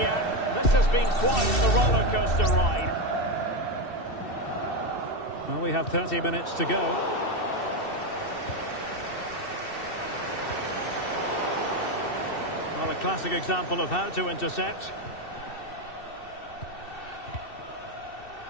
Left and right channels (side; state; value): right; late; 2.7 ms